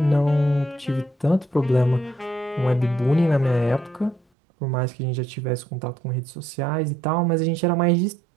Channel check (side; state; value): left; drops out; at 4.2 s